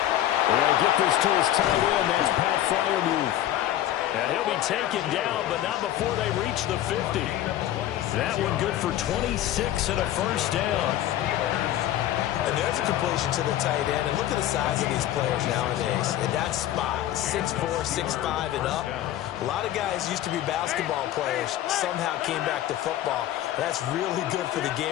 They'll get this to his tight end. That's Pat Freiermuth. And he'll be taken down, but not before they reach the 50. That one good for 26 and a first down. And there's a completion to the tight end. And look at the size of these players nowadays. In that spot, 6'4", 6'5", and up. A lot of guys used to be basketball players, somehow came back to football. That's really good for the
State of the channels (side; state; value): right; quieter; 12.9 dB